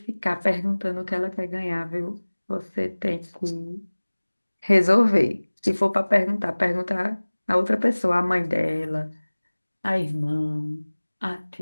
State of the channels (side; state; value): both; inverted; correlation -1.00